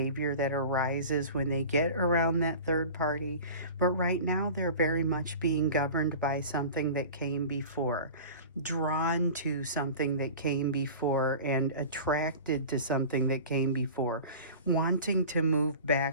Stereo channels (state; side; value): inverted; both; correlation -0.37